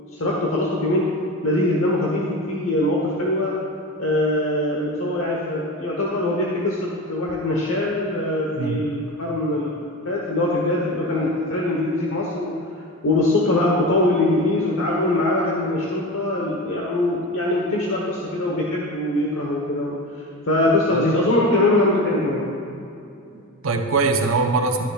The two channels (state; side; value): normal; both; correlation 0.26